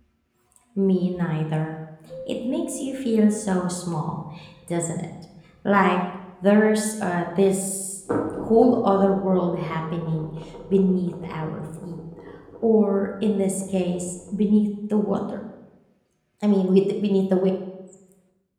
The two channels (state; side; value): identical; both; correlation 1.00